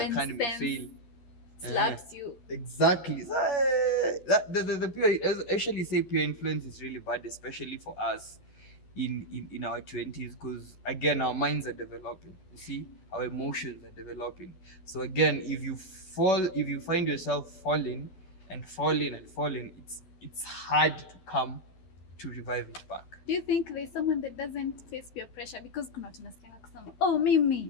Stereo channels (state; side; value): late; right; 12 ms